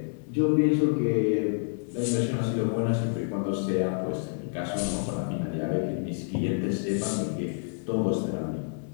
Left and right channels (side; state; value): right; silent; digital silence